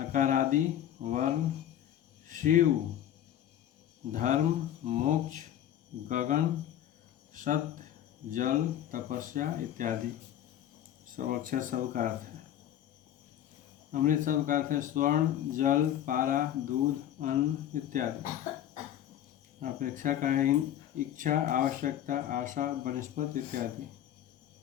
वर्ण, शिव, धर्म, मोक्ष, गगन, सत्य, जल, तपस्या इत्यादि सब अक्षर शब्द का अर्थ है। अमृत शब्द का अर्थ है स्वर्ण, जल, पारा, दूध, अन्न इत्यादि। अपेक्षा का है इच्छा, आवश्यकता, आशा, वनस्पति इत्यादि।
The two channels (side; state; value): right; quieter; 11.3 dB